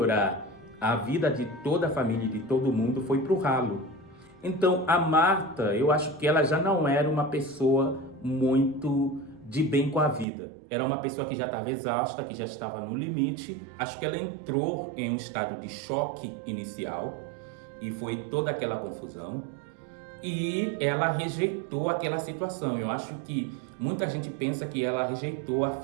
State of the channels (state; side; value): drops out; left; at 10.2 s